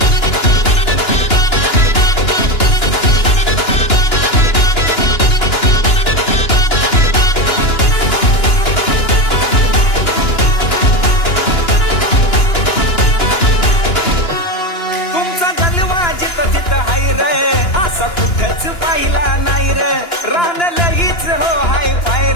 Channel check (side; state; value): right; late; 2.9 ms